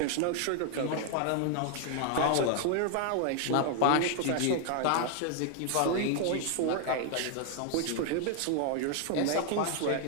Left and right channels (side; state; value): both; different; correlation 0.00